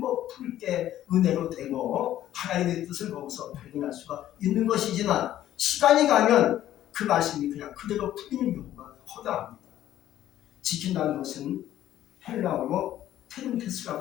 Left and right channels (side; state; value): right; quieter; 12.6 dB